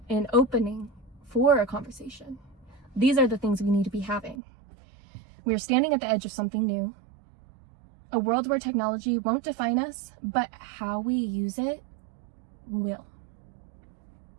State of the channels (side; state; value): left; drops out; at 4.4 s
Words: an opening for a conversation. These are the things we need to be having. We are standing at the edge of something new. A world where technology won't define us, but how we use it will.